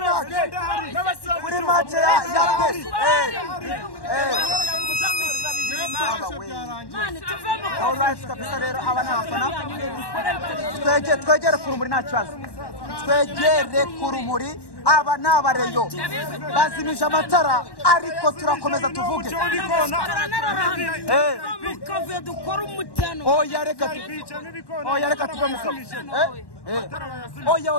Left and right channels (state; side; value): late; right; 1.1 ms